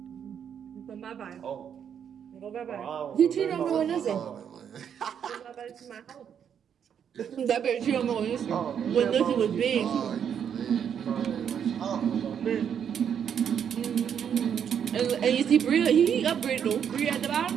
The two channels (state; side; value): quieter; left; 8.2 dB